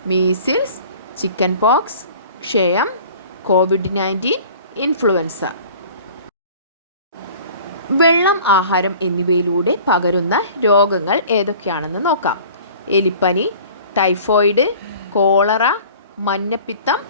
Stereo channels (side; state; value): both; inverted; correlation -0.46